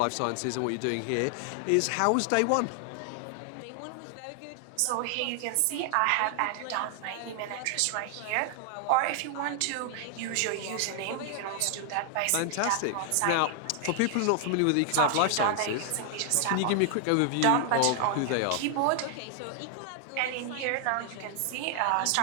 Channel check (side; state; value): both; different; correlation 0.00